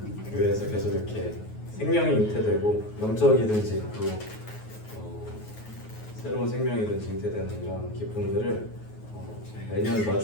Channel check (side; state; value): right; late; 9.4 ms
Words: 교회에서 계속 이렇게 생명이 잉태되고 영적이든지 또 새로운 생명이든지 잉태되는 이런 기쁨들을 매년